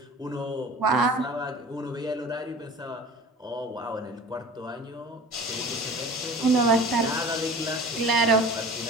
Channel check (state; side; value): normal; both; correlation 0.40